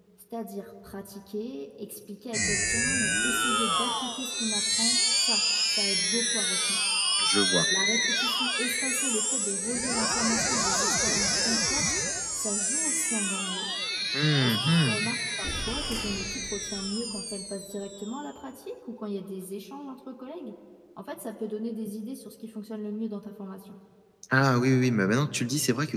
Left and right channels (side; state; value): both; identical; correlation 1.00